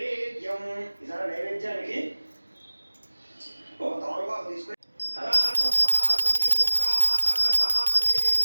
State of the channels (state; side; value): inverted; both; correlation -1.00